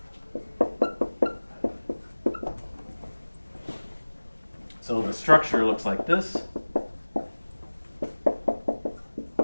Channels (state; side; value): inverted; both; correlation -1.00